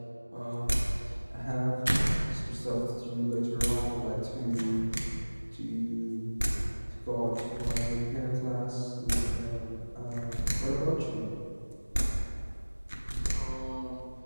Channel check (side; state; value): both; inverted; correlation -1.00